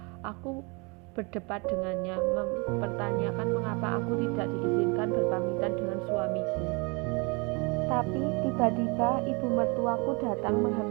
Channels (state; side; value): quieter; left; 30.3 dB